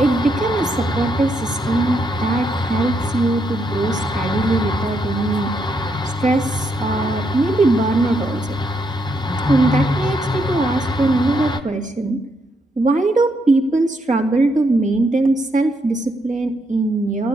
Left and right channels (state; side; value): normal; both; correlation 0.77